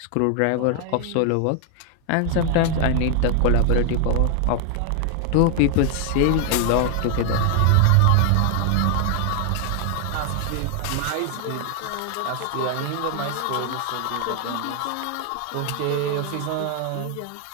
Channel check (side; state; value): both; different; correlation 0.00